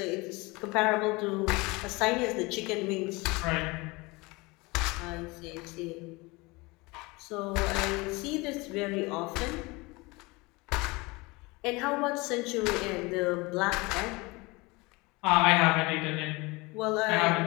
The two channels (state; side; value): quieter; right; 24.4 dB